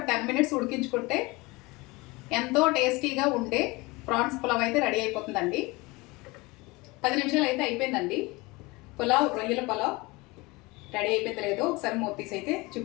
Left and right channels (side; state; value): right; quieter; 23.7 dB